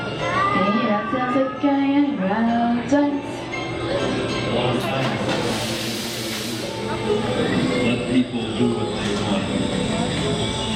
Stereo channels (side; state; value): both; identical; correlation 1.00